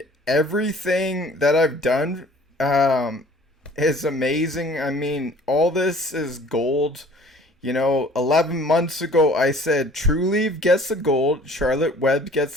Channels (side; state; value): both; normal; correlation 0.51